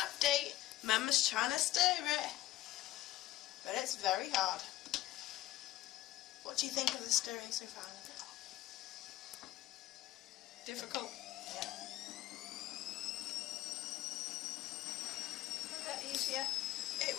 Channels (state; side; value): quieter; right; 15.6 dB